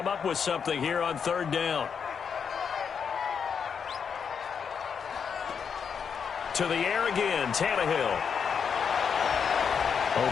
up with something here on 3rd down. To the air again, Tannehill.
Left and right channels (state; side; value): quieter; right; 6.7 dB